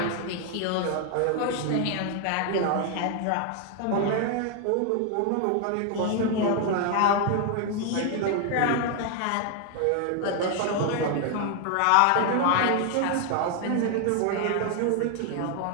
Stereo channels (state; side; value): different; both; correlation 0.00